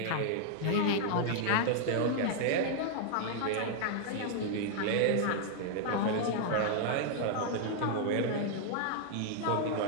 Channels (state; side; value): different; both; correlation -0.01